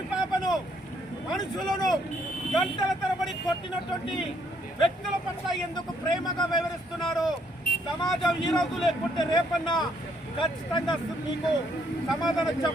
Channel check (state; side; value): normal; both; correlation 0.69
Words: మనుషులను గంటల తరబడి కొట్టినటువంటి వ్యక్తుల పట్ల ఎందుకు ప్రేమగా వ్యవహరిస్తున్నారు? సమాజం ఈ రోజు లేకుంటే రేపన్నా ఖచ్చితంగా మీకు సమాధానం